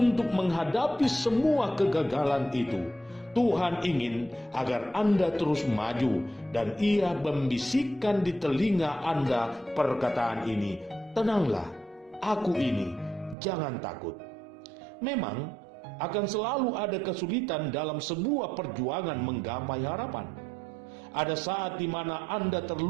menghadapi semua kegagalan itu. Tuhan ingin agar Anda terus maju dan Ia membisikkan di telinga Anda perkataan ini, tenanglah, aku ini, jangan takut. Memang Akan selalu ada kesulitan dalam sebuah perjuangan menggapai harapan. Ada saat di mana Anda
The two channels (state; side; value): drops out; left; at 13.4 s